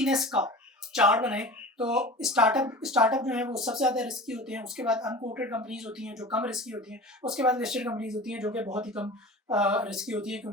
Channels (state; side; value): normal; both; correlation 0.36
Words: का चार्ट बनाएं तो स्टार्टअप जो है वो सबसे ज़्यादा रिस्की होते हैं। उसके बाद अनकोटेड कंपनीज होती हैं जो कम रिस्की होती हैं। उसके बाद लिस्टेड कंपनीज होती हैं जो कि बहुत ही कम रिस्की होती है,